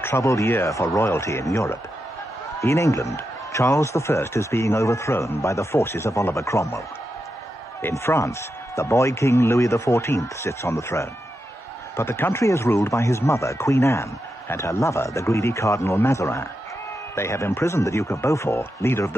year for royalty in Europe. In England, Charles I is being overthrown by the forces of Oliver Cromwell. In France, the boy king Louis XIV sits on the throne. But the country is ruled by his mother, Queen Anne, and her lover, the greedy Cardinal Mazarin. They have imprisoned the Duke of Beaufort, leader of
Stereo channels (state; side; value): normal; both; correlation 0.87